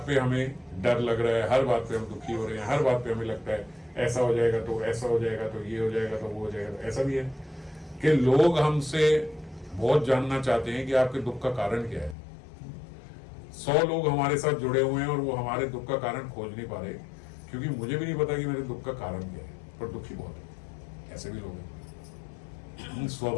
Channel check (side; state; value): right; drops out; at 12.2 s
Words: पे हमें डर लग रहा है, हर बात पे हम दुखी हो रहे हैं, हर बात पे हमें लगता है ऐसा हो जाएगा तो ऐसा हो जाएगा, तो ये हो जाएगा तो वो हो जाएगा। तो ऐसा भी है कि लोग हमसे बहुत जानना चाहते हैं कि आपके दुख का कारण क्या है। 100 लोग हमारे साथ जुड़े हुए हैं और वो हमारे दुख का कारण खोज नहीं पा रहे, क्योंकि मुझे भी नहीं पता कि मेरे दुख का कारण क्या है, पर दुखी बहुत है। ऐसे भी लोग हैं,